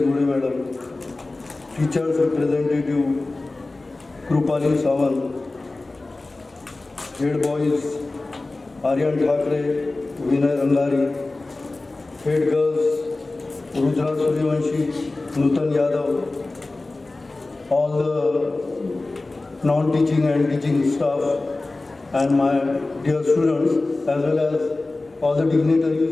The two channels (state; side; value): quieter; right; 3.2 dB